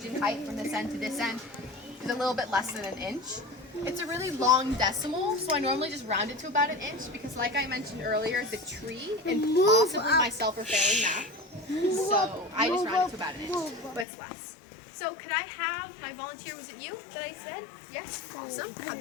in height from this end to this end is a little bit less than an inch. It's a really long decimal, so I normally just round it to about an inch because like I mentioned earlier, the tree and possibly myself are failing math. So I just round it to about an inch, but it's less. So could I have my volunteer, was it you that I said? Yes, awesome. Have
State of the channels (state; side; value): drops out; right; at 14.1 s